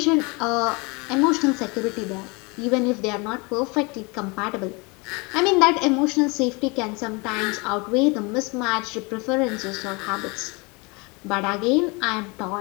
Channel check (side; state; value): right; quieter; 28.4 dB